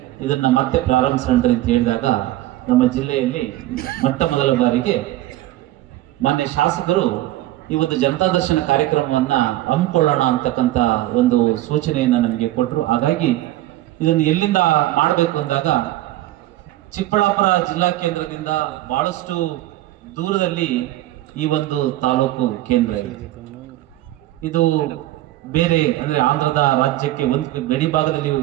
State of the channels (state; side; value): quieter; left; 15.8 dB